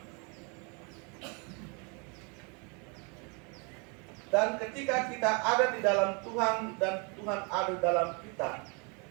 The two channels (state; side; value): quieter; left; 33.1 dB